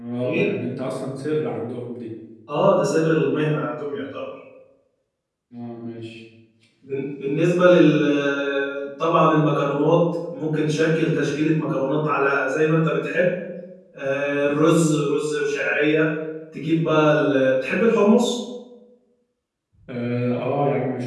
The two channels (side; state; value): both; identical; correlation 1.00